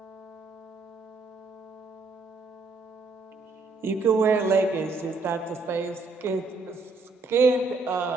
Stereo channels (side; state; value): left; quieter; 3.8 dB